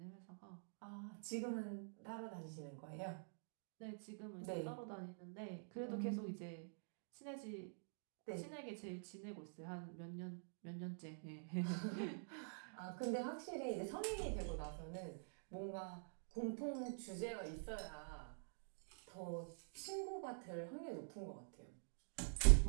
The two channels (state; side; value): silent; left; digital silence